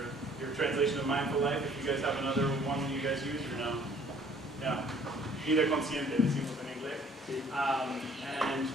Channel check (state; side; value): normal; both; correlation 0.57